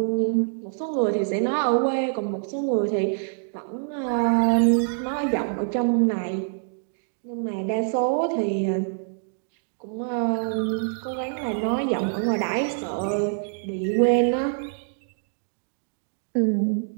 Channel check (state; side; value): silent; left; digital silence